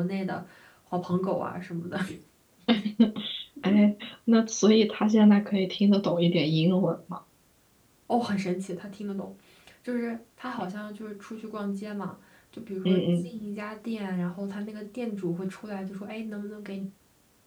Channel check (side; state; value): both; identical; correlation 1.00